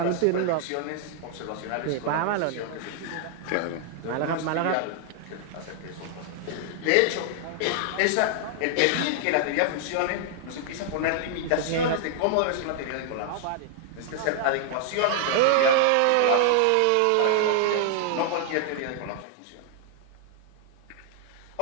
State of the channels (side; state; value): both; different; correlation 0.00